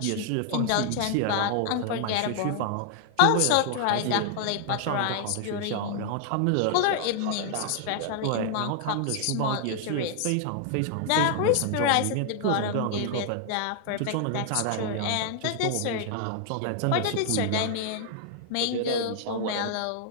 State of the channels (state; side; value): different; both; correlation -0.01